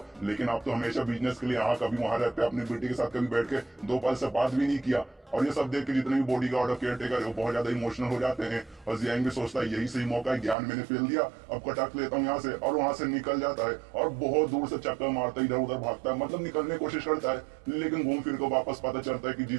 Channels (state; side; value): drops out; left; at 10.6 s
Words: लेकिन आप तो हमेशा बिजनेस के लिए यहाँ कभी वहां रहते, अपनी बेटी के साथ कभी बैठ के 2 पल से बात भी नहीं किया। और ये सब देख के जितने भी बॉडी गार्ड और केयर टेकर है वो बहुत ज्यादा इमोशनल हो जाते हैं। और जियांग भी सोचता है यही सही मौका है, ज्ञान मैंने फेल दिया, अब कटक लेता हूँ यहाँ से, और वहां से निकल जाता है और बहुत दूर से चक्कर मारता है, इधर उधर भागता है, मतलब निकलने की कोशिश करता है। लेकिन घूम फिर को वापस पता चलता है कि